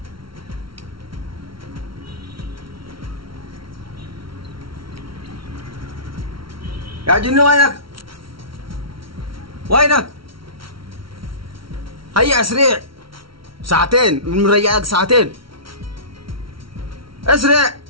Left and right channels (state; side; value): late; left; 0.74 ms